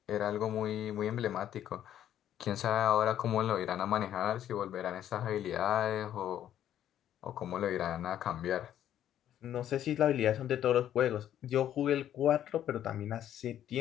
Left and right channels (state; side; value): quieter; right; 11.0 dB